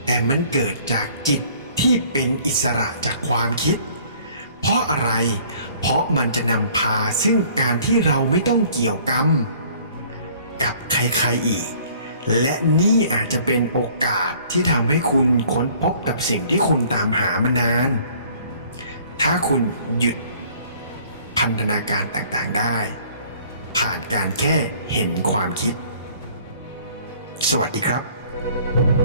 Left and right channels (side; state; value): both; inverted; correlation -0.55